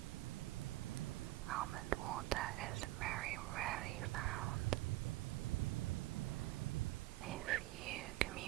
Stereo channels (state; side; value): quieter; left; 17.6 dB